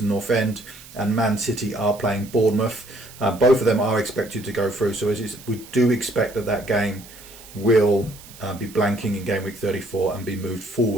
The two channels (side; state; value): right; noise; hiss, 19 dB below the sound